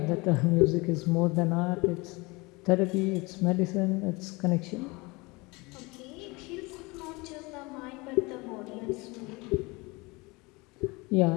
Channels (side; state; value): right; quieter; 25.2 dB